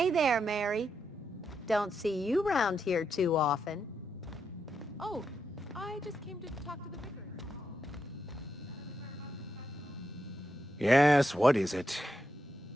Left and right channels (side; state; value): both; normal; correlation 0.83